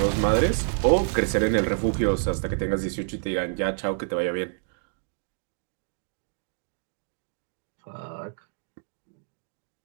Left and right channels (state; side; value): silent; left; digital silence